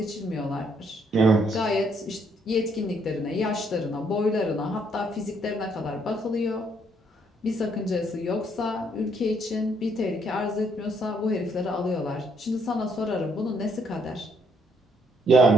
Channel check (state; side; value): normal; both; correlation 0.70